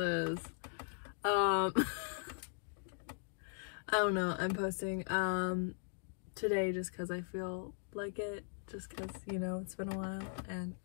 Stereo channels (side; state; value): right; silent; 52 dB below the other